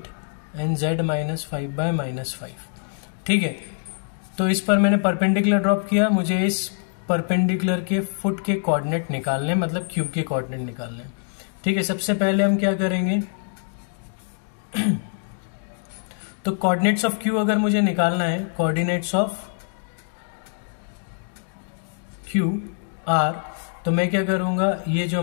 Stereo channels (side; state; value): right; silent; digital silence